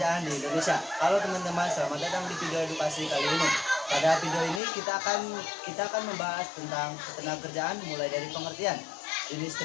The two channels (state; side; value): drops out; right; at 4.6 s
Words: di Indonesia. Halo teman-teman, selamat datang di video edukasi kali ini. Pada video ini kita akan membahas tentang ketenagakerjaan mulai dari pengertian, jenis